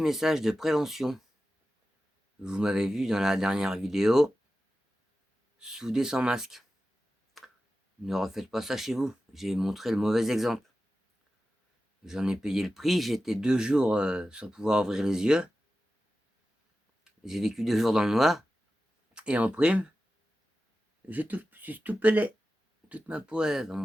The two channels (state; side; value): normal; both; correlation 0.93